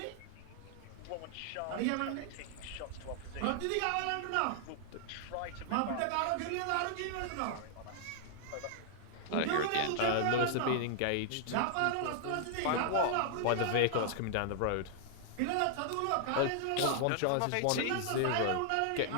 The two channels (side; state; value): both; different; correlation -0.01